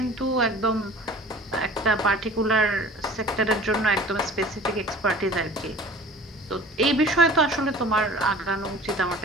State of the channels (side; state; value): both; normal; correlation 0.44